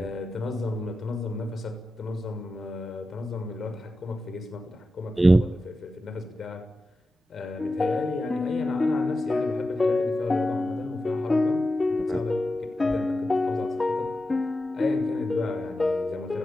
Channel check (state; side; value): normal; both; correlation 0.92